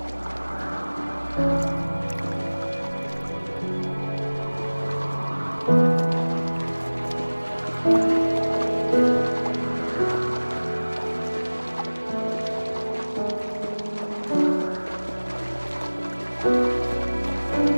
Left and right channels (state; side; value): inverted; both; correlation -1.00